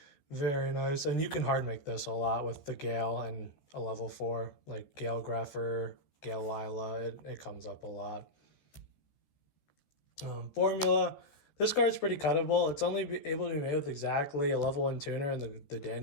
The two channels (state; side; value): late; right; 14 ms